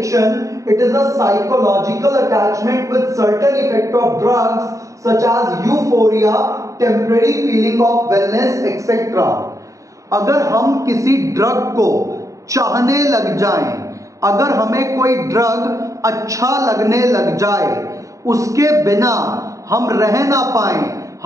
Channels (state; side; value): late; left; 0.16 ms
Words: It is a psychological attachment with certain effect of drugs such as euphoria, temporary feeling of wellness, etc. अगर हम किसी drug को चाहने लग जाएं, अगर हमें कोई ड्रग अच्छा लगने लग जाए, उसके बिना हम रह ना पाए,